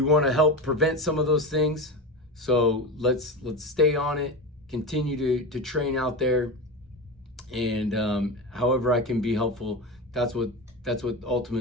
want to help prevent some of those things. So let's stay on it, continue to train out there, and however I can be helpful, that's what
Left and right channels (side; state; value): both; normal; correlation 0.22